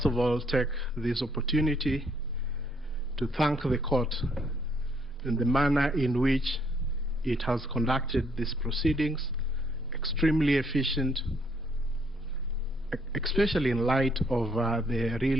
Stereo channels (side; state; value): both; normal; correlation 0.68